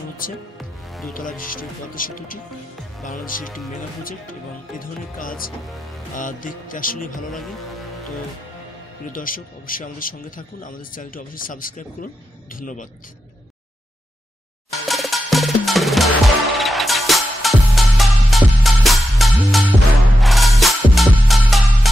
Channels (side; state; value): both; normal; correlation 0.89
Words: হচ্ছে। দোতলা বিশিষ্ট পদ্মা সেতুটি বাংলাদেশের একটি মেগা প্রজেক্ট এবং এ ধরনের কাজ দেখতে আসলেই ভালো লাগে। তো প্রিয় দর্শক, অবশ্যই আমাদের সঙ্গে থাকুন, আমাদের চ্যানেলটি অবশ্যই সাবস্ক্রাইব করুন। ধন্যবাদ।